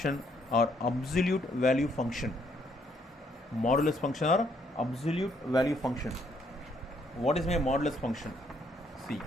or absolute value function. Modulus function or absolute value function. What is my modulus function? See,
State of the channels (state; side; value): normal; both; correlation 0.69